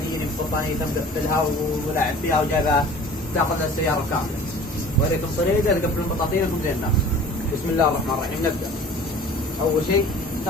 يجيني ببطانيه مقفلها ولاعب فيها وجايبها تاخذ السياره كامله. وريكم طريقه تقفلون بطاطينكم زي الناس. بسم الله الرحمن الرحيم. نبدا. اول شيء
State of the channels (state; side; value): normal; both; correlation 0.45